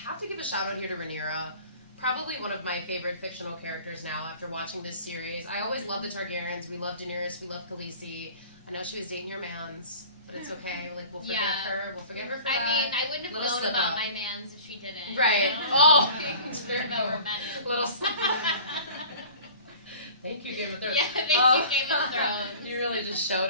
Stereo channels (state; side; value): inverted; both; correlation -0.44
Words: to give a shout out here to Rhaenyra. Probably one of my favorite fictional characters now after watching this series. I always love the Targaryens. We love Daenerys. We love Khaleesi. I know she was dating your mans, but it's okay. Like, we'll forgive her. We'll forgive her for that. I mean, I wouldn't have Little known slip about up. my mans if she didn't. Right. You know? Oh. That were men. Little slip Thank you, Game of Thrones. Yeah, thank you, Game of Thrones. You really just showed